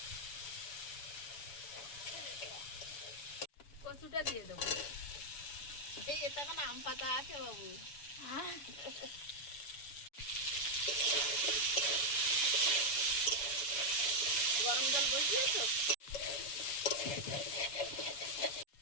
কচুটা দিয়ে দেবো। এই এটা কেন আম পাতা আছে বাবু? গরম জল বসিয়েছো?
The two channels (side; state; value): right; late; 7.0 ms